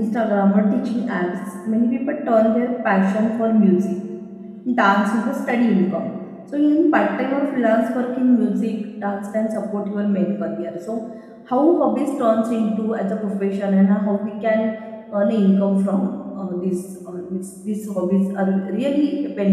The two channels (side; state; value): both; identical; correlation 1.00